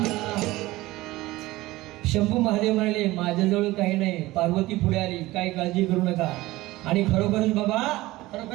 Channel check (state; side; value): quieter; left; 18.5 dB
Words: शंभू महादेव म्हणाले माझ्याजवळ काही नाही, पार्वती पुढे आली, काही काळजी करू नका. आणि खरोखरच बाबा,